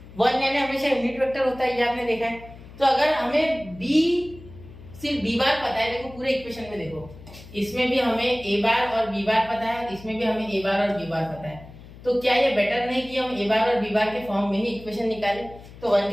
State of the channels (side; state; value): left; noise; hum, 18 dB below the sound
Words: 1 यानी हमेशा यूनिट वेक्टर होता है, ये आपने देखा है। तो अगर हमें b सिर्फ b बार पता है, देखो पूरे इक्वेशन में देखो, इसमें भी हमें a बार और b बार पता है, इसमें भी हमें a बार और b बार पता है, तो क्या ये बेटर नहीं कि हम a बार और b बार के फॉर्म में ही इक्वेशन निकालें? तो 1